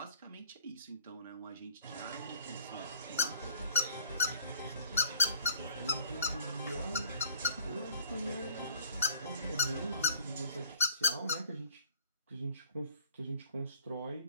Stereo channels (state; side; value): inverted; both; correlation -0.54